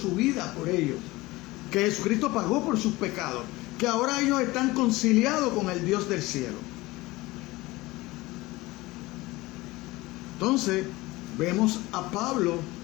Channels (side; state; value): right; quieter; 20.3 dB